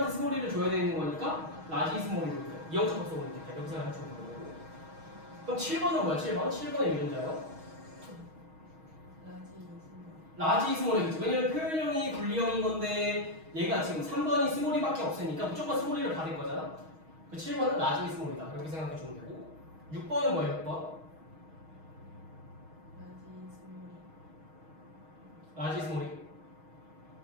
스몰이를 줘야 되는 거니까 라지 스몰이로 이형 접합성으로 있겠다. 이렇게 생각하시면 되는 거고. 그럼 7번은 뭐야? 7번의 유전자요? 라지 스몰이겠지. 왜냐면 표현형이 분리형인 건데 얘가 지금 3번이 스몰이밖에 없으니까 무조건 스몰이를 받을 거잖아. 그 7번은 라지 스몰이다. 이렇게 생각해 주면 되고 6번은 뭐예요? 6번? 라지 스몰이?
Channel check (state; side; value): late; left; 6.3 ms